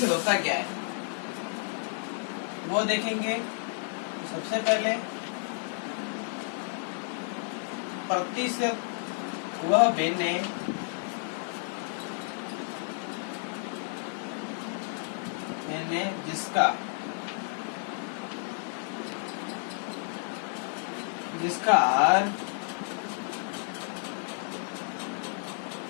होता क्या है वो देखेंगे। तो सबसे पहले प्रतिशत वह भिन्न है जिसका R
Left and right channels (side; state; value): right; silent; 57 dB below the other